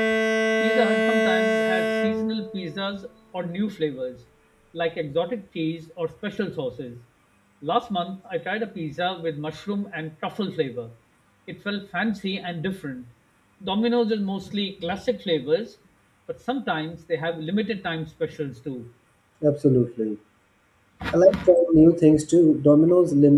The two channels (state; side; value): identical; both; correlation 1.00